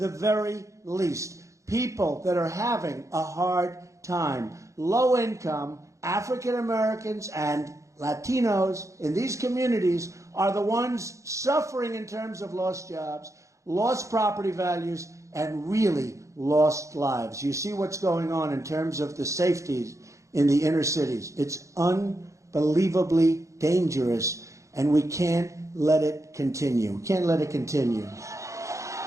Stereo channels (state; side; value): late; left; 0.15 ms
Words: very least. People that are having a hard time. Low income, African Americans, and Latinos in these communities are the ones suffering in terms of lost jobs, lost property values, and really lost lives. You see what's going on in terms of the safeties in the inner cities. It's unbelievably dangerous, and we can't let it continue. We can't let it continue.